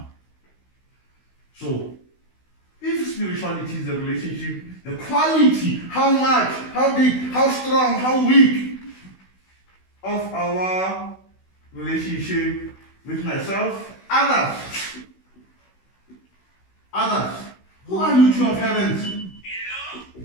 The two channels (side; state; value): right; late; 16 ms